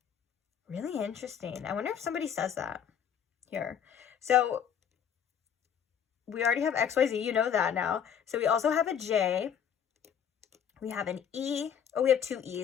Really interesting. I wonder if somebody says that here. So we already have XYZ, you know that now. So we also have a J. We have an E. Oh, we have two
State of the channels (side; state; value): right; quieter; 8.3 dB